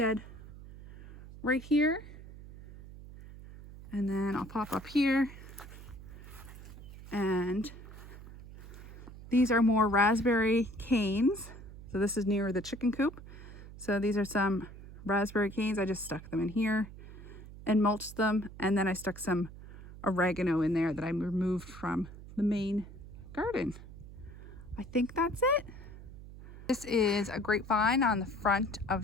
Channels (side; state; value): right; noise; hum, 15 dB below the sound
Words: right here. And then I'll pop up here. And these are more raspberry canes. So this is near the chicken coop. So these are some raspberry canes. I just stuck them in here and mulched them. And then I stuck some oregano in there that I removed from the main garden. I think that's it. This is a grapevine on the front